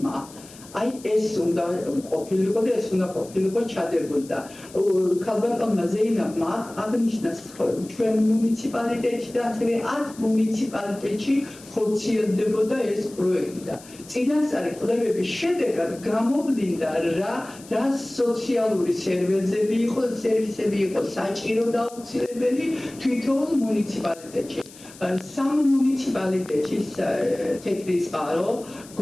აი ეს უნდა ყოფილიყო და ეს უნდა ყოფილიყო ჩადებოდა. ქალბატონმა ზეინაბმა აღნიშნა ჩვენ მუნიციპალიტეტში და ასევე 10 მუნიციპალიტეტში ხორციელდებოდა ეს პროექტი და წინასწარი კვლევების შედეგად გამოვლინდა რა სოციალური სერვისები იყო საჭირო და აუცილებელი თვითონ მუნიციპალიტეტში. 3 მუნიციპალიტეტში თეთრი წყარო,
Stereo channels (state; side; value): noise; left; hiss, 20 dB below the sound